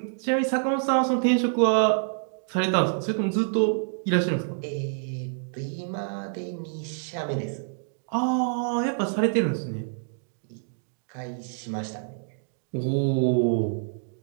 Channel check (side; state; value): left; silent; digital silence